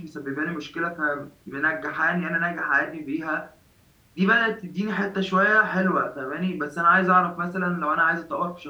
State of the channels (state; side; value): identical; both; correlation 1.00